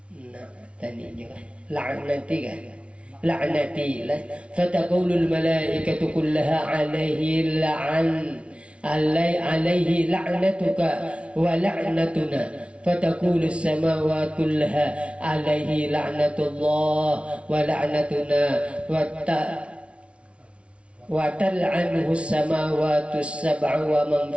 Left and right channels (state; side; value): late; left; 0.060 ms